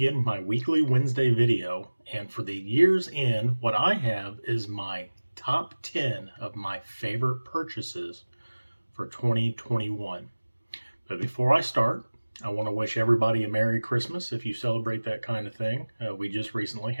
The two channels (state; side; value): inverted; both; correlation -1.00